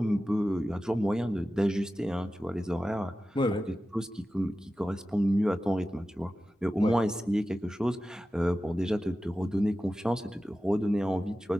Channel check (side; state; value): both; normal; correlation 0.94